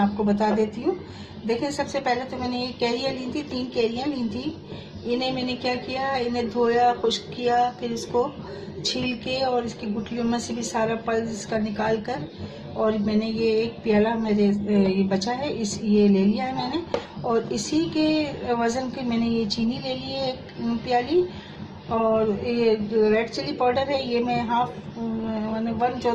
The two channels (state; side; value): identical; both; correlation 1.00